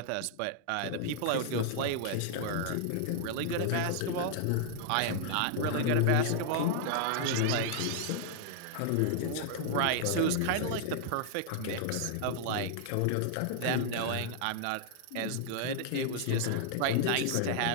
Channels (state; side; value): different; both; correlation -0.01